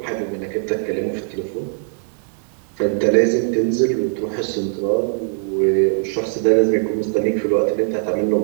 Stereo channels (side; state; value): left; silent; 62 dB below the other